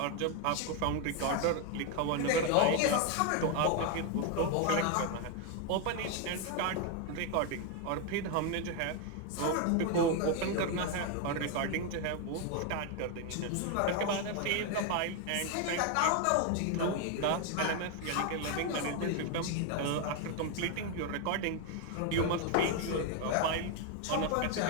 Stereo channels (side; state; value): both; different; correlation 0.01